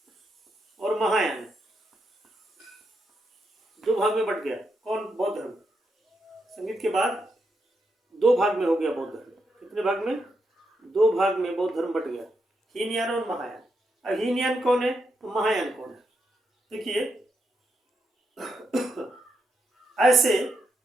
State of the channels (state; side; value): normal; both; correlation 0.82